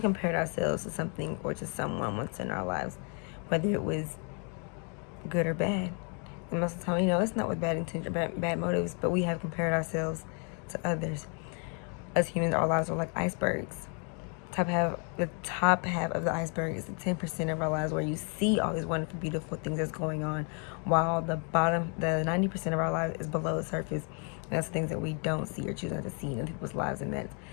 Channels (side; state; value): right; quieter; 38.6 dB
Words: compared ourselves to something or to someone once in our lives, whether it was good or bad. And most of the time, it's not with bad intention or bad motives, but we have compared ourselves to others. As humans, our lives are like icebergs. The top half of the iceberg is the 10% of our lives where you see all these wonderful, beautiful things that's going on, while the 90% of our lives is below the surface. And that's things that we don't see or choose not to see in people's lives, and that's